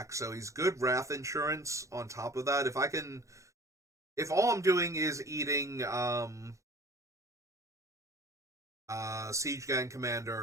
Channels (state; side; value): late; left; 0.15 ms